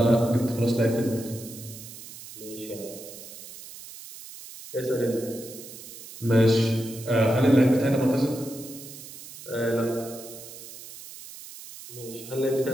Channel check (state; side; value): noise; right; hiss, 15 dB below the sound